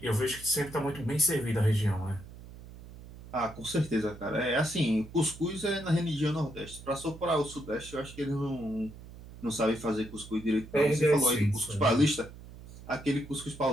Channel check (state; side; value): noise; right; hum, 16 dB below the sound